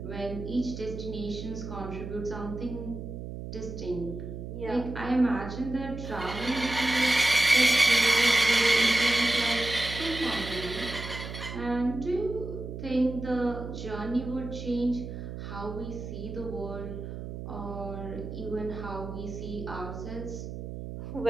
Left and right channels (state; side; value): noise; right; hum, 8 dB below the sound